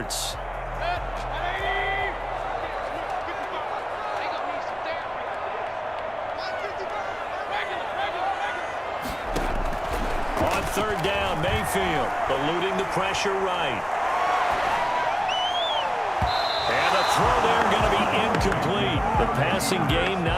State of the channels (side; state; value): both; identical; correlation 1.00